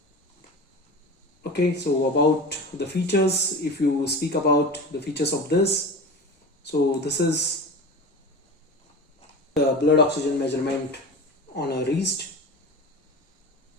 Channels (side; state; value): both; normal; correlation 0.30